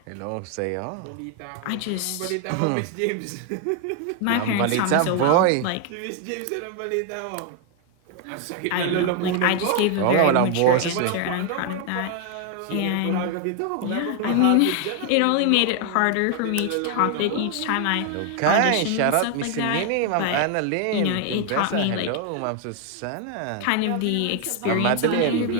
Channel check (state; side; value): different; both; correlation 0.00